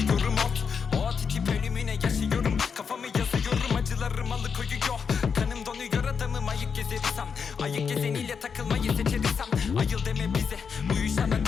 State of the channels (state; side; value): quieter; right; 6.2 dB